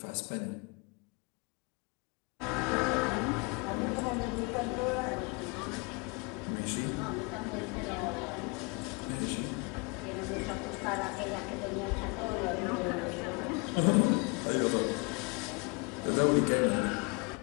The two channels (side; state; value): right; quieter; 31.6 dB